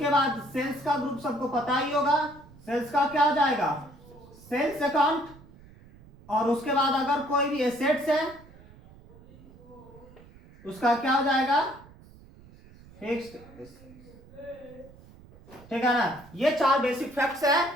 बाद सेल्स का ग्रुप सबको पता ही होगा, सेल्स का क्या हो जाएगा, सेल्स अकाउंट। और उसके बाद अगर कोई भी एसेट्स है उसका क्या हो जाएगा, फिक्स्ड, ठीक है ना। ये 4 बेसिक फैक्ट्स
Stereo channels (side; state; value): right; noise; rumble, 22 dB below the sound